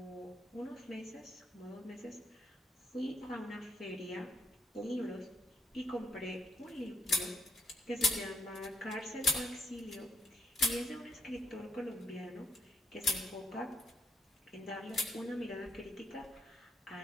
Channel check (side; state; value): both; normal; correlation 0.74